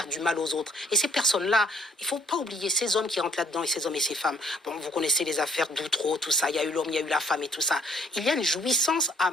du mal aux autres. Et ces personnes-là, il ne faut pas oublier ces hommes qui rentrent là-dedans, et ces hommes et ces femmes. Bon, vous connaissez les affaires d'Outreau, tout ça, il y a eu l'homme, il y a eu la femme et tout ça. Il y a une jouissance à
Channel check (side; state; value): both; normal; correlation 0.63